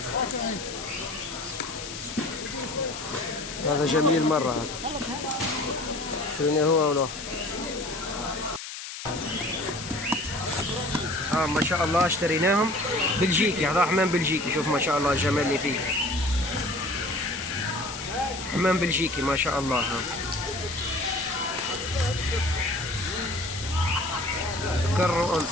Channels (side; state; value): left; noise; hiss, 9 dB below the sound